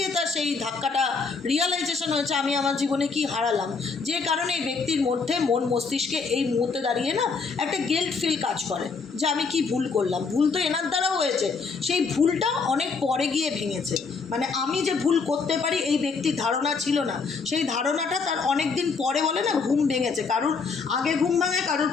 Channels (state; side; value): quieter; right; 4.8 dB